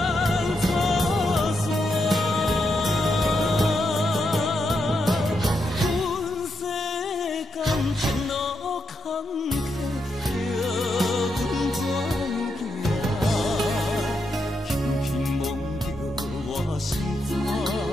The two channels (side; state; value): both; normal; correlation 0.82